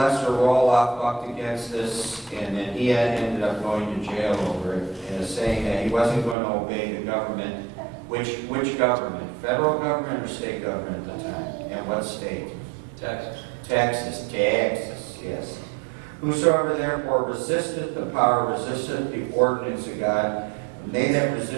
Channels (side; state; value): left; drops out; at 6.4 s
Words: Roloff bucked against this, and then he ended up going to jail over it, and saying that he wasn't going to obey the government. Which government? Federal government or state government at the time? And what state? Texas. Texas, yes. Whosoever therefore resisteth the power, resisteth the ordinance of God, and they that